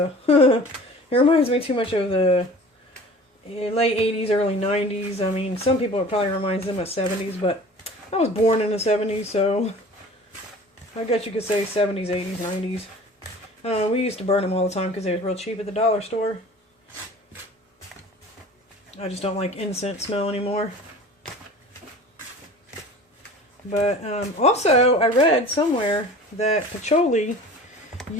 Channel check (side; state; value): both; normal; correlation 0.42